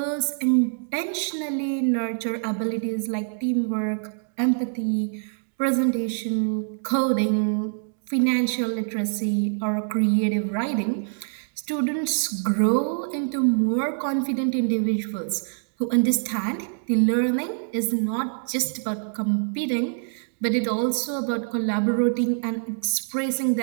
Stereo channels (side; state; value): left; silent; digital silence